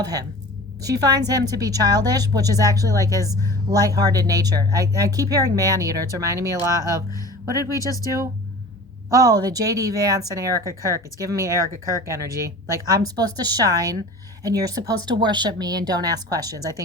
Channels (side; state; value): both; normal; correlation 0.39